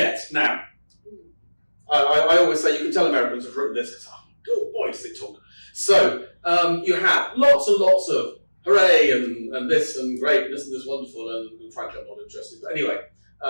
now, I always say you can tell Americans have written this, because, oh boy, does it talk. So, you have lots and lots of hooray and this and great and isn't this wonderful and frankly I'm not interested. But anyway,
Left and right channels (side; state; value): both; inverted; correlation -1.00